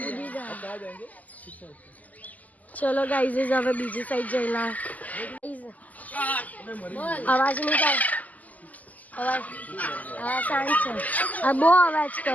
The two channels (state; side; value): late; right; 0.078 ms